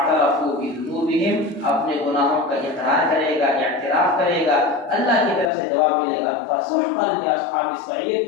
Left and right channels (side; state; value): right; drops out; at 5.5 s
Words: بذنوبہم، اپنے گناہوں کا اقرار کرے گا، اعتراف کرے گا، اللہ کی طرف سے جواب ملے گا فسحقا لاصحاب